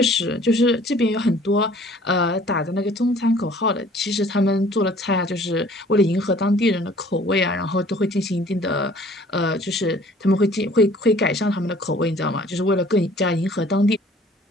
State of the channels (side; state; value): both; normal; correlation 0.54